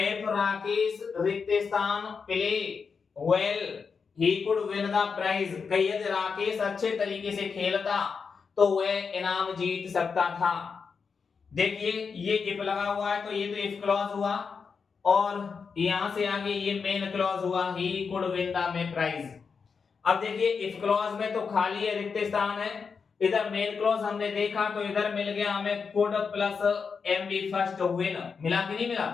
Rakesh रिक्त स्थान play well he could win the prize. यदि राकेश अच्छे तरीके से खेलता तो वह इनाम जीत सकता था। देखिए ये इफ लगा हुआ है तो ये तो इफ क्लॉज हुआ और यहां से आगे ये मेन क्लॉज हुआ, he could win the prize. अब देखिए इफ क्लॉज में तो खाली है, रिक्त स्थान है, इधर मेन क्लॉज हमने देखा तो इधर मिल गया हमें could plus MB first win, मिला कि नहीं मिला,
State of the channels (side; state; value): right; quieter; 5.6 dB